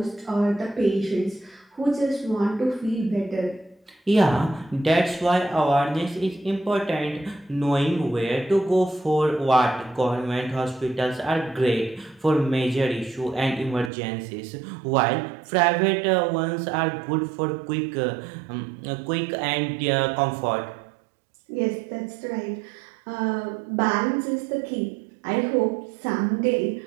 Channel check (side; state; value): left; drops out; at 13.9 s